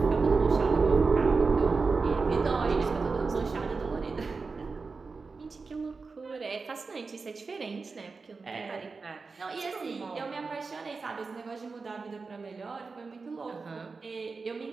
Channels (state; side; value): quieter; left; 4.4 dB